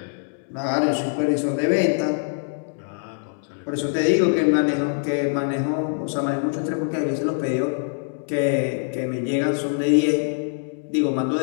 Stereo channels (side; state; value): right; silent; 63 dB below the other